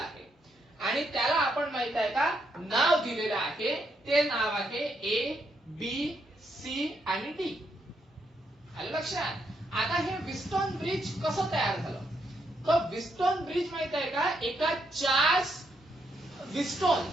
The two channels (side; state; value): both; normal; correlation 0.77